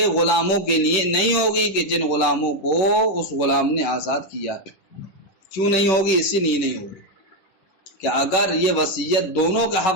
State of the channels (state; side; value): late; right; 10 ms